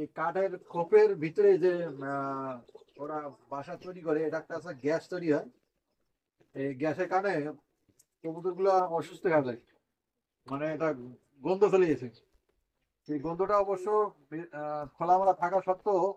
কাঠের খোপের ভিতরে যে আহ, ওরা বাসা তৈরি করে, এটা একটা আছে গ্যাস তৈরি হয়, এই গ্যাসের কারণে কবুতর গুলো অসুস্থ হয়ে যায়, মানে এটা গন্ধ চলে গেছে। সেই গন্ধটা অবশ্য খোলামেলা থাকা সত্ত্বেও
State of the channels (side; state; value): both; identical; correlation 1.00